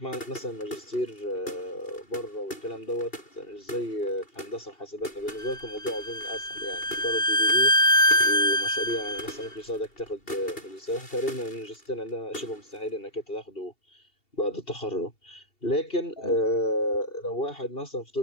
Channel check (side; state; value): right; late; 2.7 ms